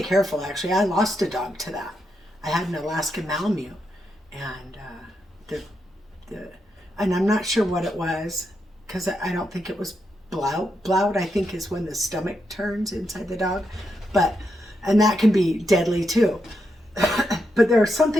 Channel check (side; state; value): both; normal; correlation 0.83